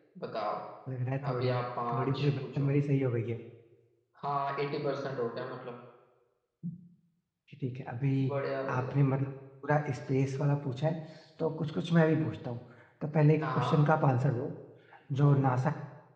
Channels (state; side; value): identical; both; correlation 1.00